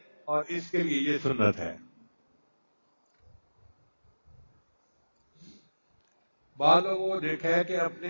اور اس کے لیے یہ سنت ہے۔ بعض لوگوں کو دیکھا ہے کہ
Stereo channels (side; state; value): both; inverted; correlation -1.00